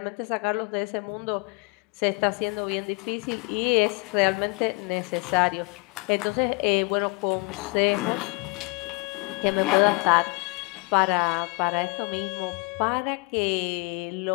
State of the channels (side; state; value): right; quieter; 29.3 dB